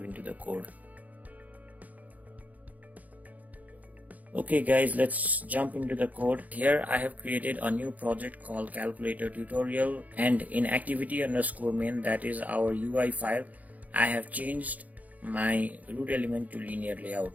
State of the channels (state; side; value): late; left; 0.077 ms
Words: into the code. Okay guys, let's jump into the code. Here I have created a new project called calculator tutorial, and in activity_main, that is our UI file, I have changed my root element to linear layout.